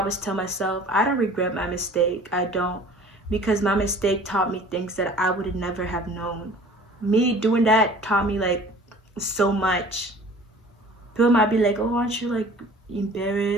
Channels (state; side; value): normal; both; correlation 0.46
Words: tell myself, I don't regret my mistake. I don't, because my mistake taught me things that I would never have known. Me doing that taught me like so much. People might be like, oh, aren't you like